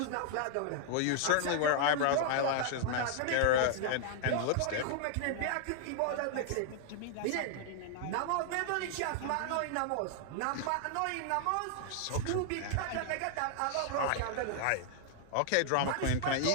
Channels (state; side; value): different; both; correlation 0.00